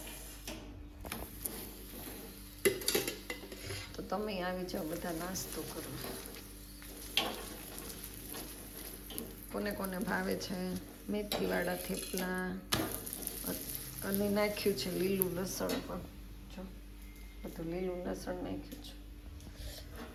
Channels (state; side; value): identical; both; correlation 1.00